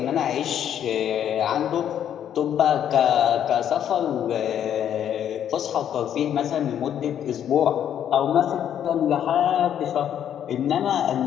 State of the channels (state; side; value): quieter; right; 9.8 dB